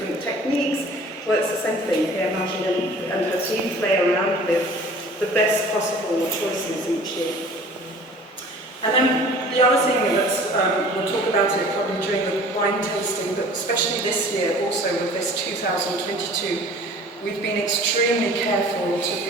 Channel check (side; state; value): both; normal; correlation 0.47